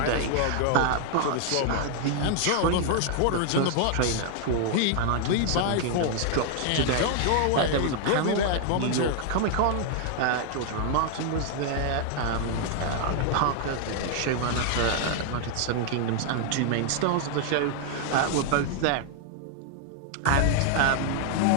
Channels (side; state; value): both; different; correlation 0.00